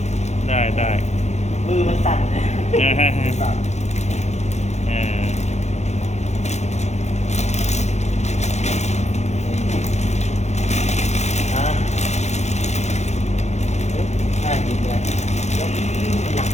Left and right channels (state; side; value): late; right; 0.33 ms